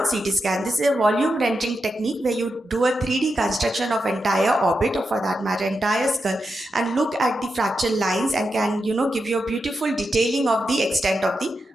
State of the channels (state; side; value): normal; both; correlation 0.87